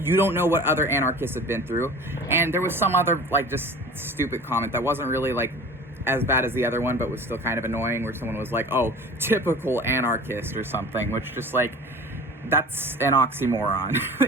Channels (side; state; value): both; normal; correlation 0.40